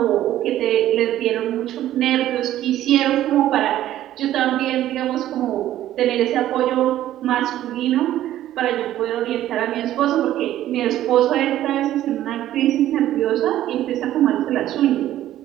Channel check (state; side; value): quieter; left; 13.1 dB